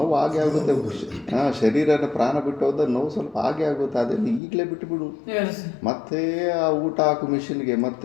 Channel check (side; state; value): right; drops out; at 4.4 s